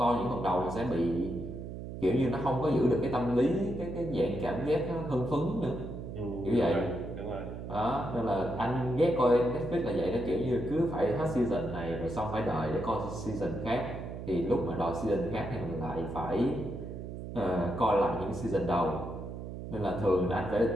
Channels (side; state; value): right; noise; hum, 8 dB below the sound